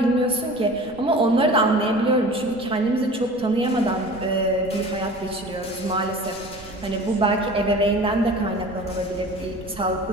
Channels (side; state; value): right; noise; rumble, 21 dB below the sound